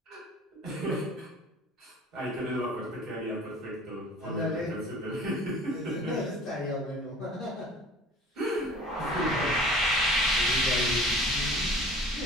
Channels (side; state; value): both; normal; correlation 0.45